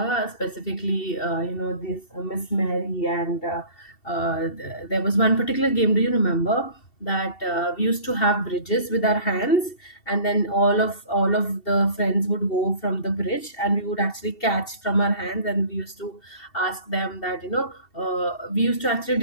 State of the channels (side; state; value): right; late; 2.7 ms